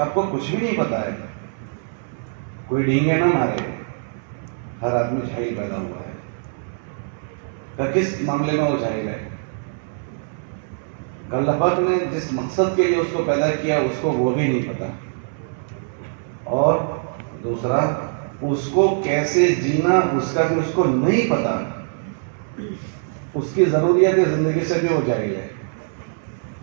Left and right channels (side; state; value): left; silent; 64 dB below the other